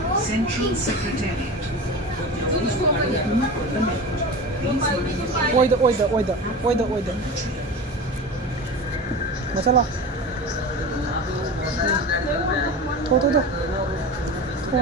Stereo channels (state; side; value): normal; both; correlation 0.30